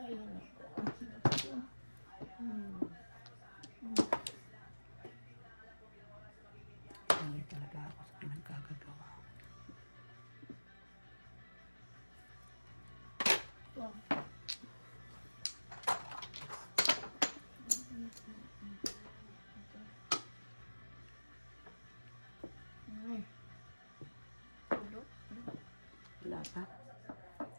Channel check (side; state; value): both; inverted; correlation -1.00